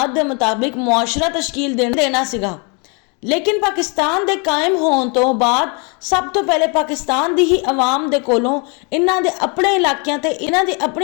ਦੇ ਮੁਤਾਬਿਕ ਮੁਆਸ਼ਰਾ ਤਸ਼ਕੀਲ ਦੇਣਾ ਸੀਗਾ। ਲੇਕਿਨ ਪਾਕਿਸਤਾਨ ਦੇ ਕਾਇਮ ਹੋਣ ਤੋਂ ਬਾਅਦ ਸਭ ਤੋਂ ਪਹਿਲੇ ਪਾਕਿਸਤਾਨ ਦੀ ਹੀ ਆਵਾਮ ਦੇ ਕੋਲੋਂ ਇਹਨਾਂ ਦੇ ਆਪਣੇ ਇਲਾਕਿਆਂ ਤੇ ਇਹਨਾਂ ਦੀ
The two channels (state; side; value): quieter; right; 33.4 dB